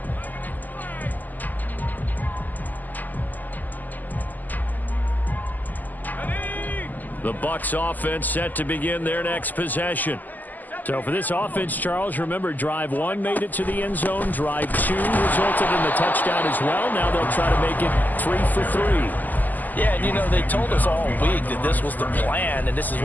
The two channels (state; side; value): late; right; 0.084 ms